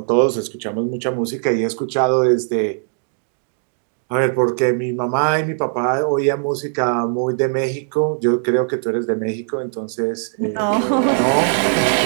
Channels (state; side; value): silent; left; digital silence